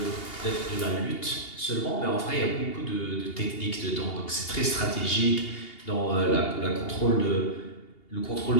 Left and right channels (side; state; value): right; late; 2.8 ms